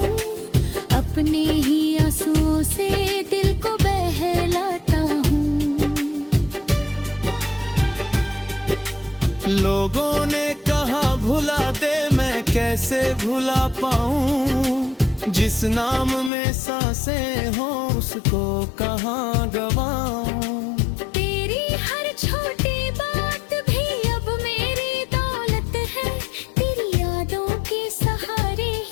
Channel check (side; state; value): right; drops out; at 16.3 s